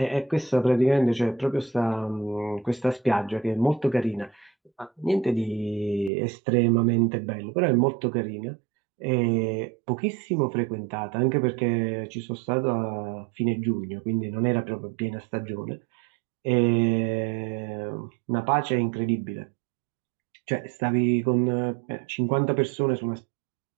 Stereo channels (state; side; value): drops out; left; at 6.1 s